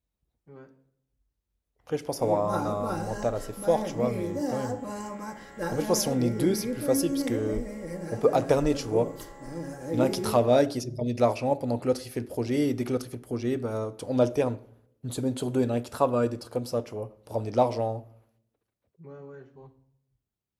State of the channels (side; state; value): both; identical; correlation 1.00